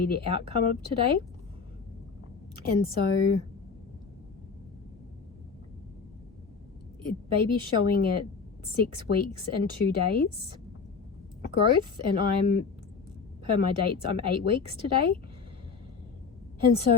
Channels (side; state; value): right; quieter; 5.2 dB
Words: the outcome of today. And so baby's showing at 6 weeks and 2 days growth, and I'm, per my dates, I'm 8 weeks today. And